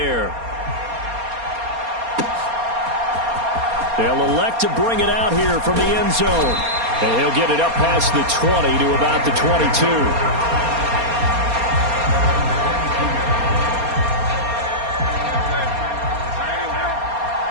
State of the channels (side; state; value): left; late; 4.3 ms